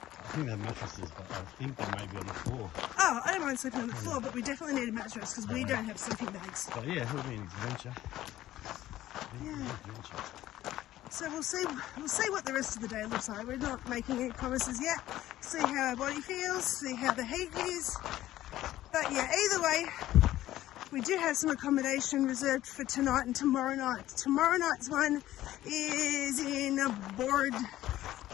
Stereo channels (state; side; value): quieter; right; 14.4 dB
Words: think they have mattresses, but I think they may be on the floor. Oh, I don't mind sleeping on the floor, but we definitely need a mattress because we don't have sleeping bags. But yeah, it'll be an adventure. Yeah. So we'll see what the rest of the day looks like. We're not making any promises yet. See how our body feels, see how the heat is. But yeah, either way, we do have some accommodation reserved for tonight and tomorrow night. Tomorrow night's one is in Bordadilla.